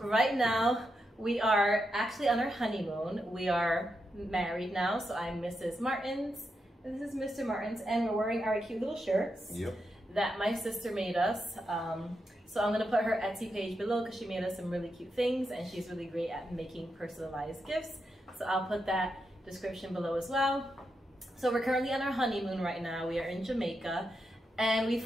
now, we are actually on our honeymoon. We are married now, so I'm Mrs. Martins, and this is Mr. Martins, and we're wearing our cute little shirts that my sister made us. So I'm gonna put her Etsy page below because she made us some really cute things, and she's really great at making personalized gifts. So I'll put that description below as well. So we're currently on our honeymoon right now. We are in Jamaica, and we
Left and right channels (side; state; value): both; normal; correlation 0.85